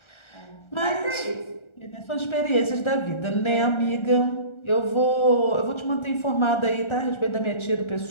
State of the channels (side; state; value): right; late; 1.4 ms